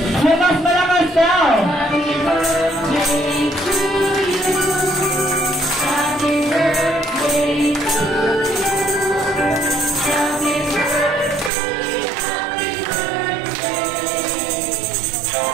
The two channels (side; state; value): left; drops out; at 11.5 s